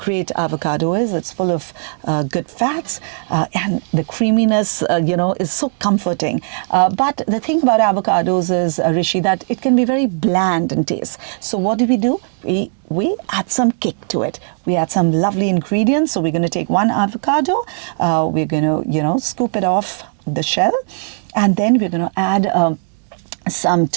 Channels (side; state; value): left; silent; digital silence